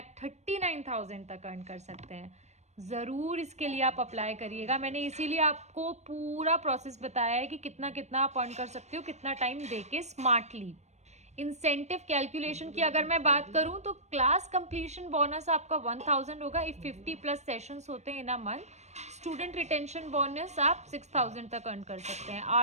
तक अर्न कर सकते हैं। ज़रूर इसके लिए आप अप्लाई करिएगा। मैंने इसीलिए आपको पूरा प्रोसेस बताया है कि कितना कितना आप अर्न कर सकते हो, कितना टाइम देके स्मार्टली। इंसेंटिव कैलकुलेशन की अगर मैं बात करूं तो क्लास कंप्लीशन बोनस आपका 1000 होगा इफ 50 प्लस सेशंस होते हैं in a month. Student retention bonus आप 6000 तक अर्न कर सकते हैं।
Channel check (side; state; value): left; late; 0.33 ms